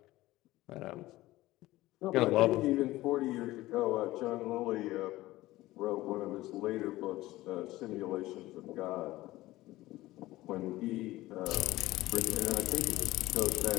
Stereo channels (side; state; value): right; quieter; 17.4 dB